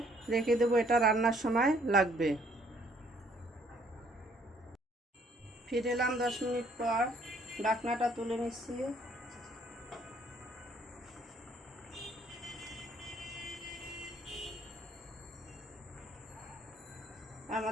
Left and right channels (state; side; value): normal; both; correlation 0.64